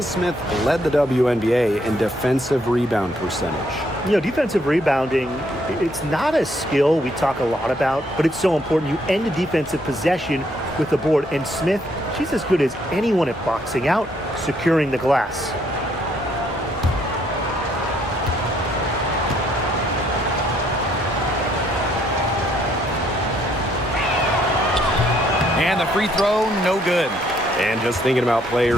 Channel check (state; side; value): normal; both; correlation 0.69